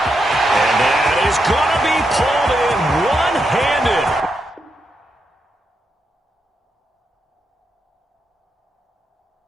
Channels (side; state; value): both; normal; correlation 0.83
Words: that is going to be pulled in one-handed.